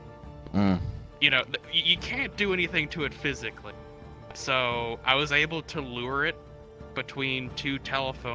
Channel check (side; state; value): both; identical; correlation 1.00